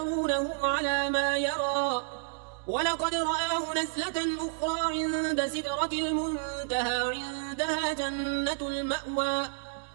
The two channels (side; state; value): left; silent; digital silence